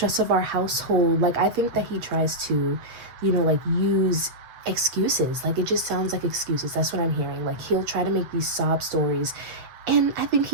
of our household. Like, I think that he tries to, you know, like, use excuses. Like, it just sounds like excuses. That's what I'm hearing. Like, he'll try to make these sob stories, and I think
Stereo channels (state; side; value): late; left; 8.0 ms